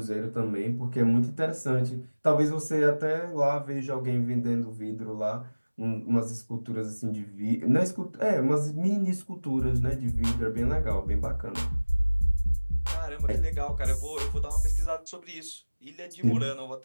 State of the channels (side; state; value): both; inverted; correlation -1.00